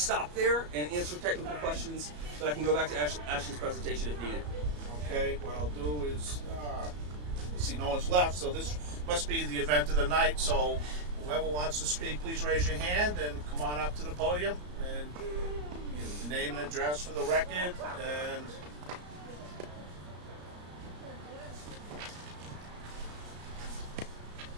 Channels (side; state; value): left; late; 34 ms